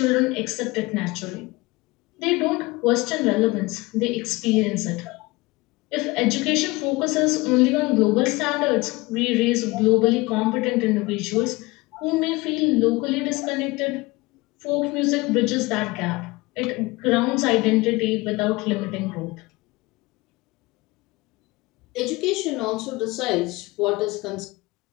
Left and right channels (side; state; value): right; quieter; 22.4 dB